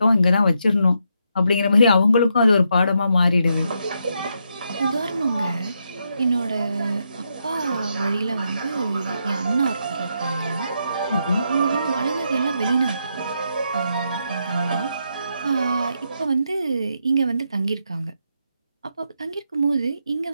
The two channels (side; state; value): both; inverted; correlation -0.80